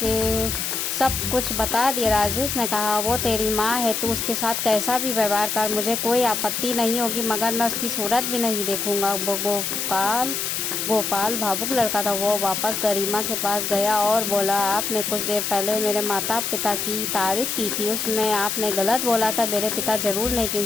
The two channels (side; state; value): left; noise; hiss, 2 dB below the sound